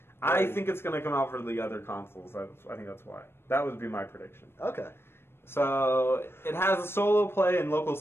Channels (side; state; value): right; late; 0.12 ms